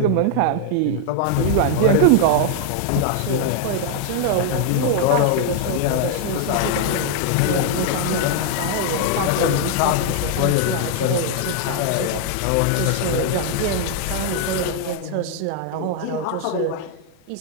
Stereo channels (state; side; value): different; both; correlation 0.00